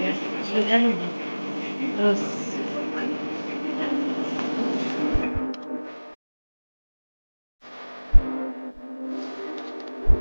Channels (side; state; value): both; inverted; correlation -1.00